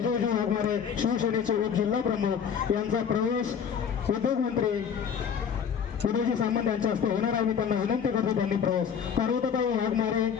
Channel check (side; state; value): right; quieter; 7.4 dB